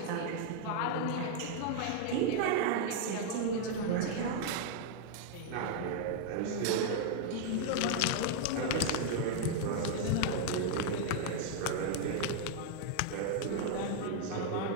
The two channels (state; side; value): different; both; correlation 0.00